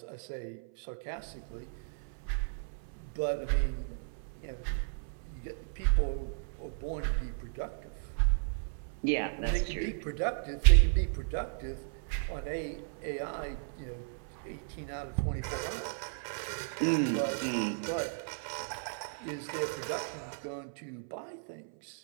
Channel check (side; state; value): left; silent; 55 dB below the other